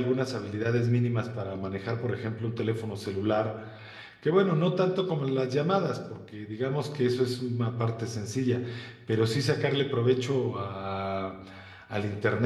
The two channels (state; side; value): identical; both; correlation 1.00